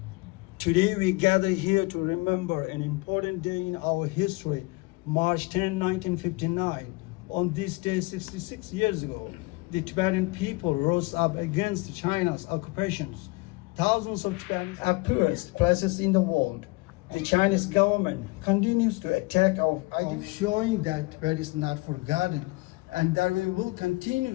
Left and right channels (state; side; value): quieter; right; 24.3 dB